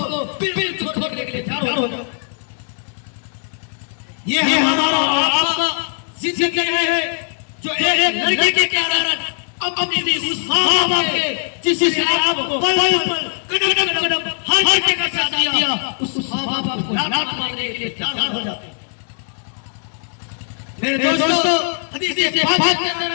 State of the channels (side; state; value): right; silent; digital silence